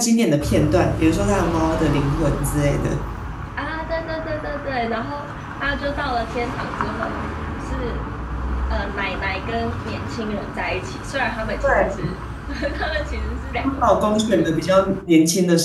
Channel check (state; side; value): identical; both; correlation 1.00